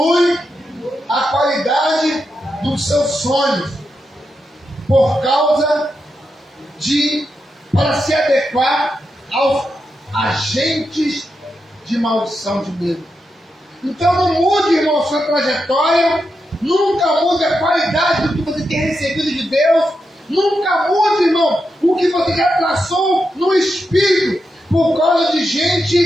a qualidade dos seus sonhos por causa para se adequar aos agentes de maldição de medo. Então não mude, irmão, sua trajetória, nunca mude a qualidade do que você tem recebido de Deus, nunca mude, irmão, o que você já traçou no espírito por causa de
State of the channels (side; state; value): both; normal; correlation 0.86